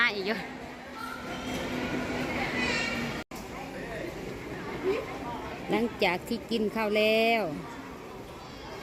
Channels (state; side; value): identical; both; correlation 1.00